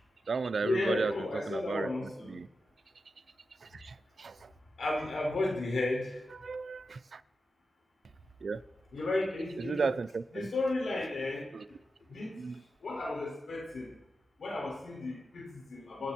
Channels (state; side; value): normal; both; correlation 0.89